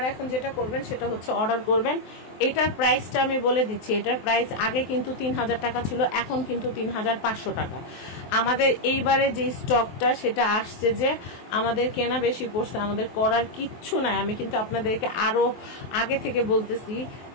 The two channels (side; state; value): right; late; 23 ms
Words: এখন যেটা করবেন সেটা হচ্ছে অর্ডার করবেন। এটার প্রাইসটা আমি বলে দিচ্ছি, এটার প্রাইস আগে কিন্তু 3000 টাকা ছিল, এখন কিন্তু 3500 টাকা। আমাদের এইবারে যে স্টকটা সেটা আসছে যে আমাদের কেনা বেশি পড়ছে, আমাদের করার কিচ্ছু নাই। আমি কিন্তু আপনাদেরকে আরো আগে থেকে বলতেছি,